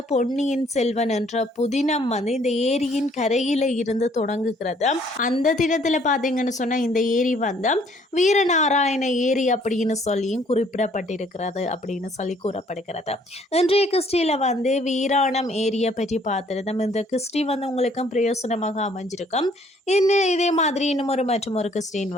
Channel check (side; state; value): both; normal; correlation 0.62